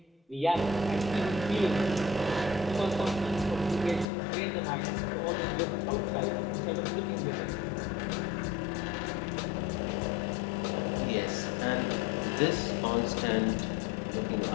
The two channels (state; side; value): drops out; right; at 4.0 s